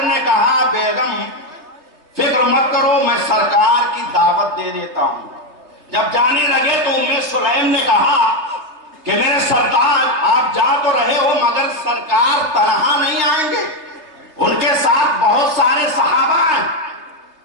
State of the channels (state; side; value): late; left; 3.2 ms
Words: نے کہا بیگم فکر مت کرو، میں سرکار کی دعوت دے دیتا ہوں۔ جب جانے لگے تو ام سلیم نے کہا کہ میرے سردار آپ جا تو رہے ہو مگر سرکار تنہا نہیں آئیں گے، ان کے ساتھ بہت سارے صحابہ ہیں،